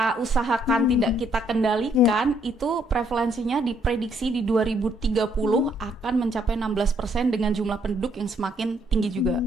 usahakan, tidak kita kendalikan, itu prevalensinya diprediksi di 2030 akan mencapai 16% dengan jumlah penduduk yang semakin tinggi juga,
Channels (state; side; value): normal; both; correlation 0.69